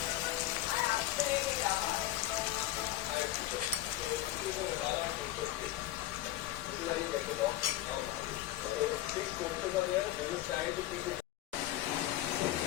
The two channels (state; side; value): quieter; right; 14.7 dB